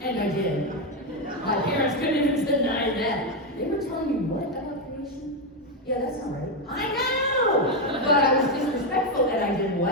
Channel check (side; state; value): both; normal; correlation 0.06